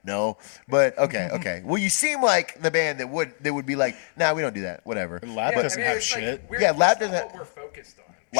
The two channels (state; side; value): silent; right; 62 dB below the other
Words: no, but okay. Well, you seem like the band that would be like, nah, we don't do that. Whatever. Lab Yeah, doesn't I mean, have it's like, shit. we're- Yeah, Lab that's not doesn't- what we're focused on.